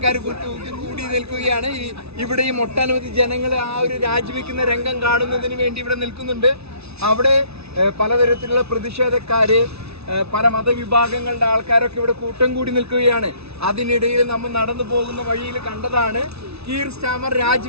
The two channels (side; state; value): left; late; 0.80 ms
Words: കൂടി നിൽക്കുകയാണ്. ഇവിടെയും ഒട്ടനവധി ജനങ്ങൾ ആ ഒരു രാജിവെക്കുന്ന രംഗം കാണുന്നതിന് വേണ്ടി ഇവിടെ നിൽക്കുന്നുണ്ട്. അവിടെ പലതരത്തിലുള്ള പ്രതിഷേധക്കാര്, പല മതവിഭാഗങ്ങളുടെ ആൾക്കാരൊക്കെ ഇവിടെ കൂട്ടം കൂടി നിൽക്കുകയാണ്. അതിനിടയിൽ നമ്മൾ നടന്നു പോകുന്ന വഴിയിൽ കണ്ടതാണ് കീർ സ്റ്റാമർ